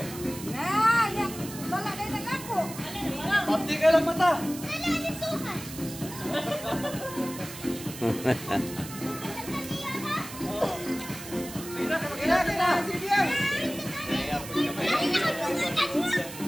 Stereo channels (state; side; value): noise; right; hiss, 12 dB below the sound